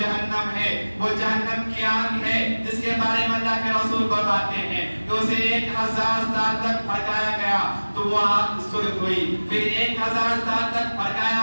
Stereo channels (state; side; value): inverted; both; correlation -1.00